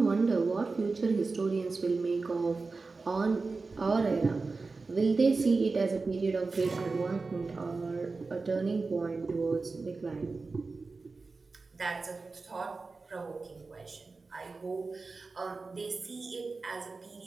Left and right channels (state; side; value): quieter; left; 4.0 dB